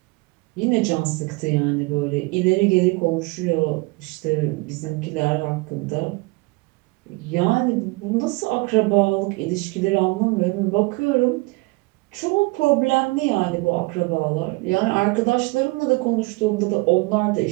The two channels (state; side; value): quieter; left; 25.6 dB